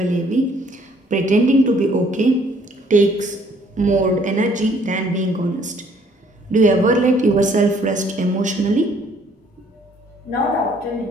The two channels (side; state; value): both; normal; correlation 0.62